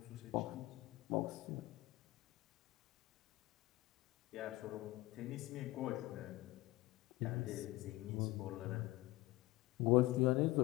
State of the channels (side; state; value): right; quieter; 19.1 dB